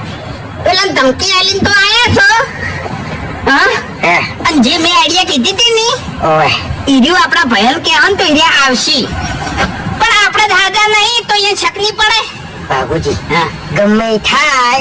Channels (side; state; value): both; identical; correlation 1.00